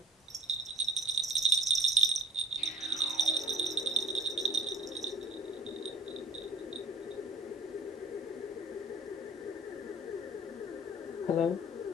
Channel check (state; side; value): normal; both; correlation 0.47